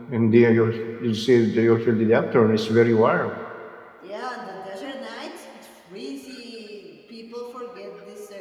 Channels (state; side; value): identical; both; correlation 1.00